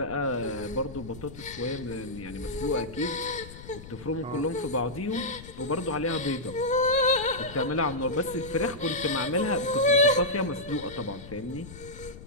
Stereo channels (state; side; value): noise; left; rumble, 15 dB below the sound